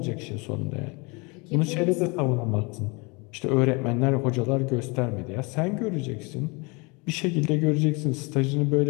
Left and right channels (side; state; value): right; quieter; 28.6 dB